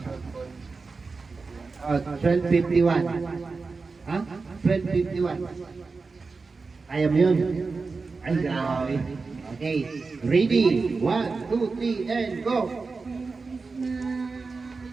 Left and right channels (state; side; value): quieter; left; 4.3 dB